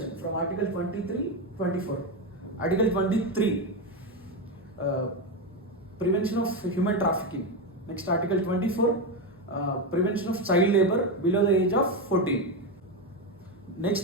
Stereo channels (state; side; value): normal; both; correlation 0.11